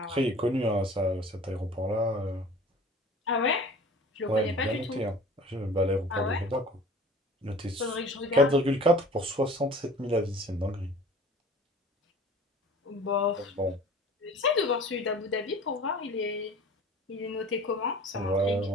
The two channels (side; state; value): both; normal; correlation 0.44